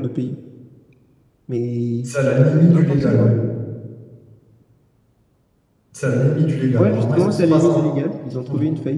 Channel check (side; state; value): both; identical; correlation 1.00